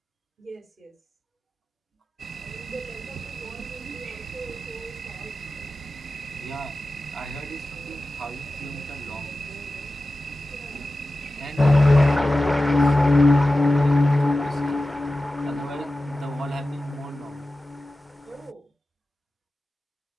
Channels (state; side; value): normal; both; correlation 0.94